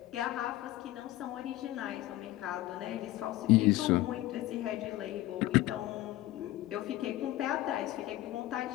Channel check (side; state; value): right; quieter; 16.1 dB